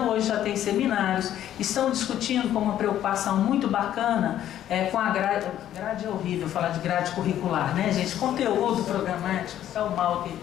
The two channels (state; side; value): quieter; right; 11.6 dB